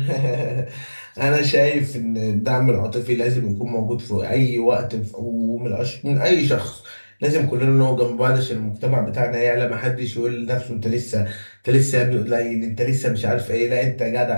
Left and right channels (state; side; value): inverted; both; correlation -1.00